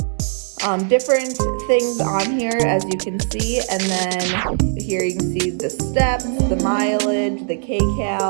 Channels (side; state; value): left; silent; digital silence